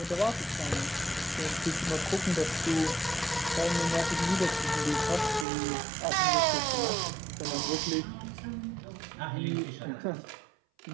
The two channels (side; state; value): left; drops out; at 5.5 s